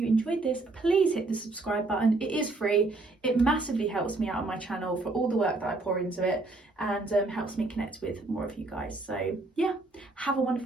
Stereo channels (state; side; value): quieter; left; 3.2 dB